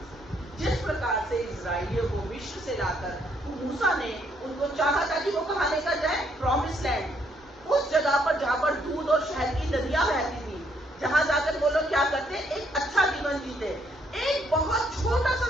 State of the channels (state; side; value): normal; both; correlation 0.71